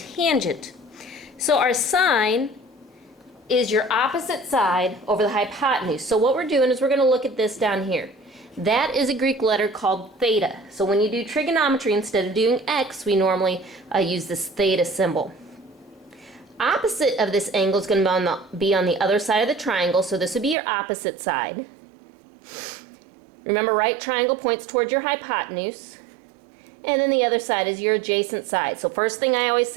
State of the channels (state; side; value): drops out; left; at 20.6 s